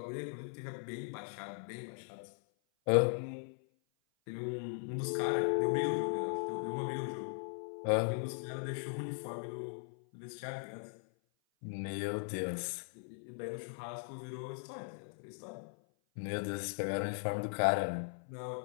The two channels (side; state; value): right; silent; 52 dB below the other